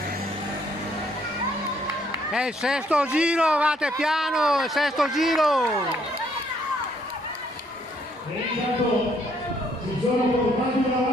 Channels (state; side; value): normal; both; correlation 0.68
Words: È il sesto giro, vate piano, il sesto giro! E intanto si sono portati